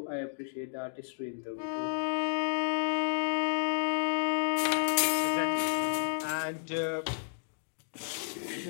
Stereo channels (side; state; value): right; silent; digital silence